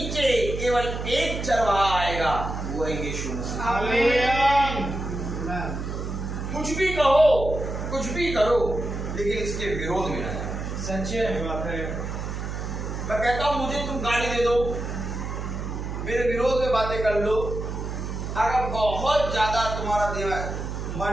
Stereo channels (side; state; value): right; noise; hum, 5 dB below the sound